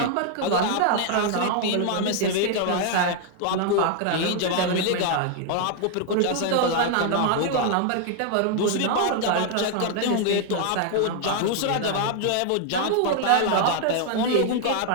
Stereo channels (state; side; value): different; both; correlation 0.00